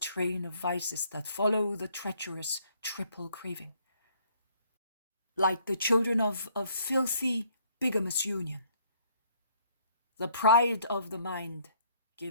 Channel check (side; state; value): both; inverted; correlation -0.64